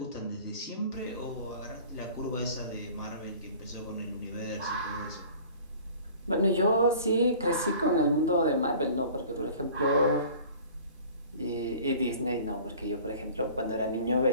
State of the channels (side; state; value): both; inverted; correlation -0.46